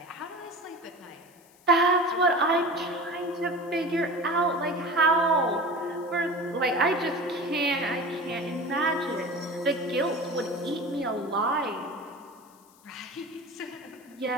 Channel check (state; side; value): noise; left; hiss, 28 dB below the sound